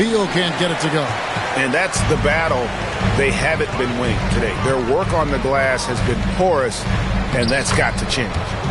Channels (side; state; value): both; identical; correlation 1.00